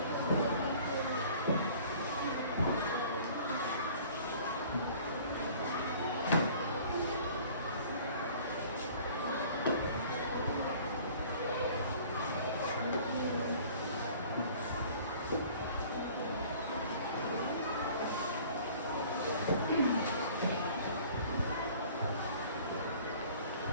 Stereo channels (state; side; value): inverted; both; correlation -0.50